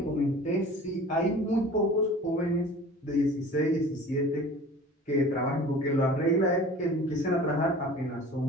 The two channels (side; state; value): both; normal; correlation 0.42